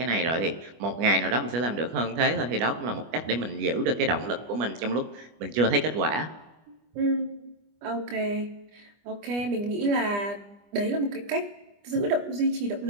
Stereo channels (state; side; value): late; left; 25 ms